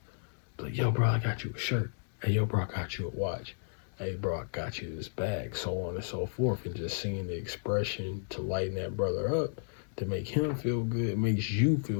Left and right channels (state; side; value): silent; right; digital silence